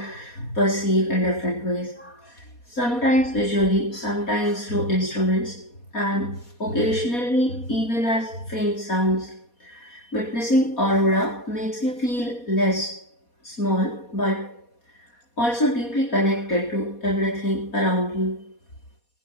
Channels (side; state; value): right; late; 4.2 ms